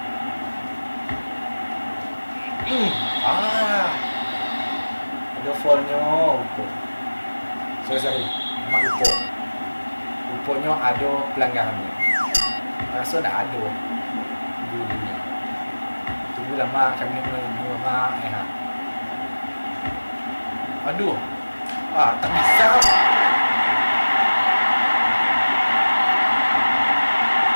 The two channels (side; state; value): both; inverted; correlation -1.00